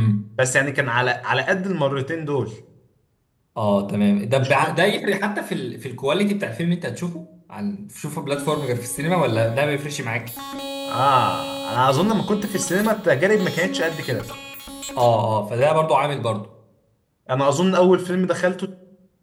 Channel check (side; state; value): both; identical; correlation 1.00